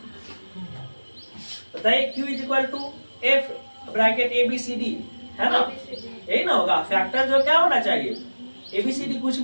बताइए? Q is equal to F bracket ABCD, है ना, यही ना होगा। फैक्टर जो क्या होना चाहिए? ABCD कुछ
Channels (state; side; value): inverted; both; correlation -1.00